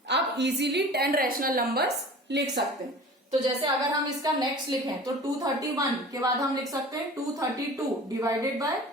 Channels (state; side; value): normal; both; correlation 0.41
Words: अब इजीली 10 रैशनल नंबर्स लिख सकते हैं। तो जैसे अगर हम इसका नेक्स्ट लिखें तो 231 के बाद हम लिख सकते हैं 232 divided by